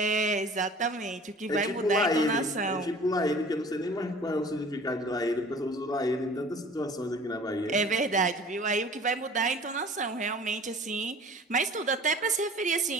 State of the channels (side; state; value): both; normal; correlation 0.45